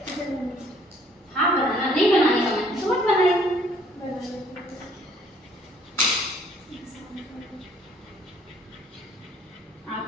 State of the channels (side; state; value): both; normal; correlation 0.61